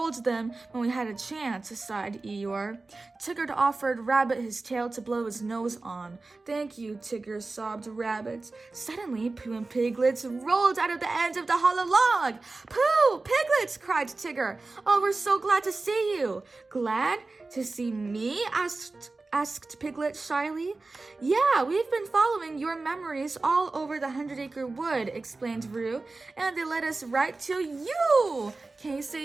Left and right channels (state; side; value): quieter; left; 3.5 dB